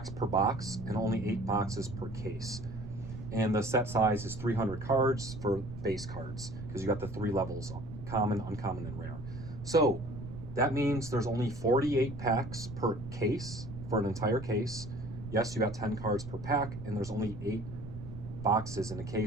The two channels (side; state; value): right; noise; rumble, 10 dB below the sound